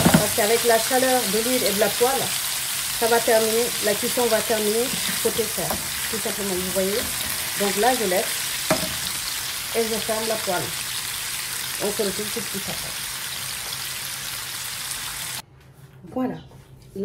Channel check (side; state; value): both; identical; correlation 1.00